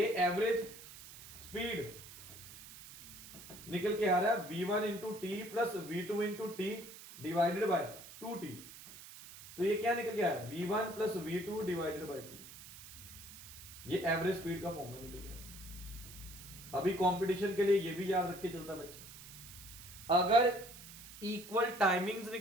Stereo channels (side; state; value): right; noise; hiss, 15 dB below the sound